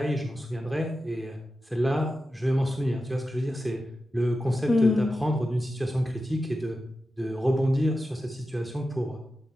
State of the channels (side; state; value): both; normal; correlation 0.91